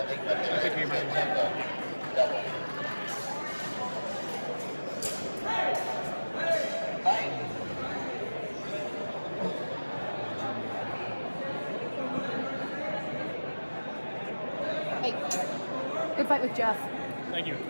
thing, but they're double. Hey, good fight with Jeff. Thank you.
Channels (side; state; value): both; inverted; correlation -1.00